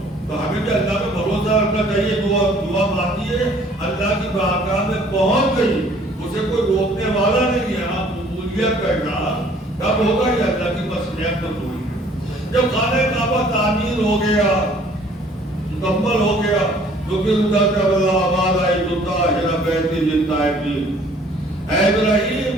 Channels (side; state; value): both; normal; correlation 0.56